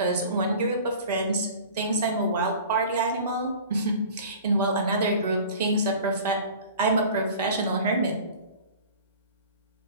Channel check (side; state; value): both; inverted; correlation -0.42